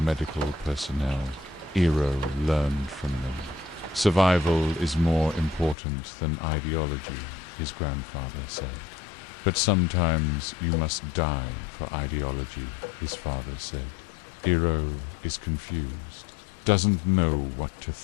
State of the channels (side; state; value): right; drops out; at 5.8 s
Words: personnel. Eero learned from them. Survival is more important than ideology, his grandfather said. But sometimes you must die for ideology, his father said. Eero is confused, doesn't know what to